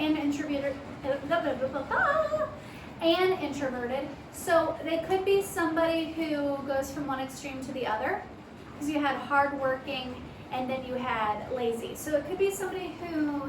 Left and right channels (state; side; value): identical; both; correlation 1.00